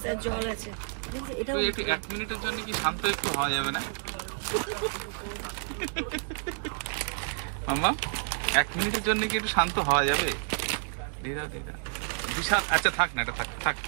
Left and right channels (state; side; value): silent; left; digital silence